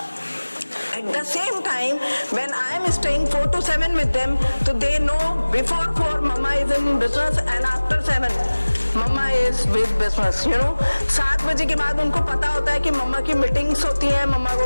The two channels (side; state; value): both; inverted; correlation -1.00